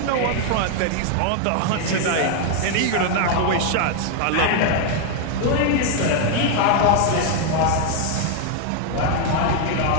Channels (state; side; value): different; both; correlation 0.00